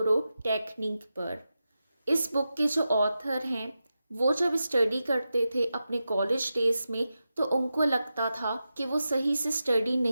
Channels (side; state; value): both; inverted; correlation -0.91